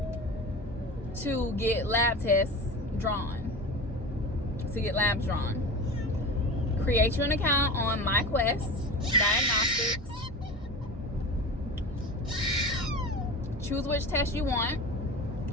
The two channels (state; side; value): normal; both; correlation 0.30